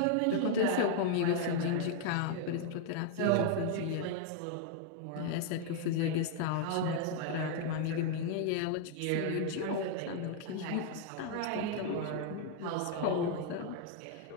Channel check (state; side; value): different; both; correlation 0.00